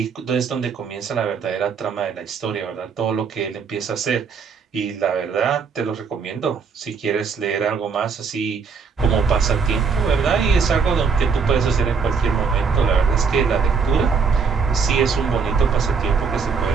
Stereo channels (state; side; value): quieter; left; 5.6 dB